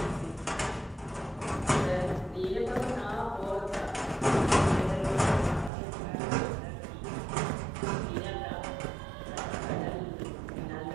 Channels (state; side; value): drops out; left; at 5.7 s